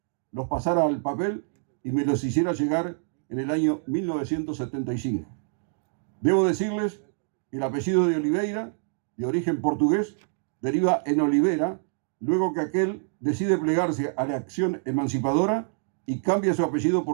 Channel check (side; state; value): left; silent; 61 dB below the other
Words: los pasara al papel y me los hiciera llegar en el año 1975. Debo decirles que el apellido de Oliveira, de origen portugués, deriva en Olivera, luego que aquel decide plegarse a la acción emancipadora y cambia su apellido